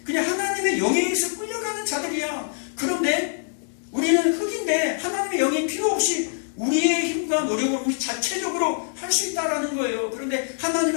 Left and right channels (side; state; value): right; silent; digital silence